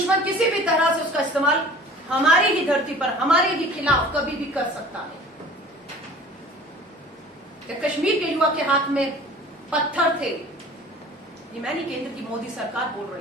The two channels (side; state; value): both; normal; correlation 0.45